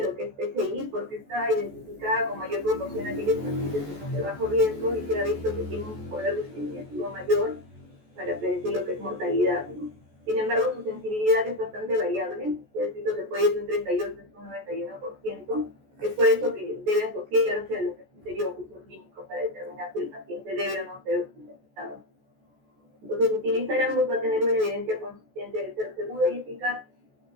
lo que es PCI porque está identificada con mayor proporción a aquellos pacientes que son de bajo riesgo y se ha visto que tienen un poder discriminativo mayor para predecir lo que es mortalidad, ¿no? Sin embargo, su sensibilidad es bastante variable, se ha visto que puede ir de un 38 hasta un 91%, es por eso que debe asociarse a lo que es criterio o juicio clínico para determinar si el paciente debe o no ser hospitalizado. Entonces, utilizar ambos va a tener una evidencia consistente de ser seguro y eficaz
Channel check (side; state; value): left; late; 14 ms